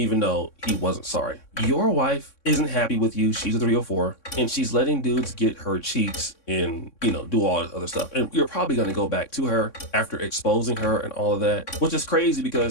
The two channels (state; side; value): late; right; 3.6 ms